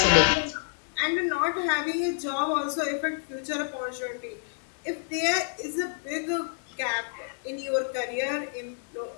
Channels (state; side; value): silent; right; digital silence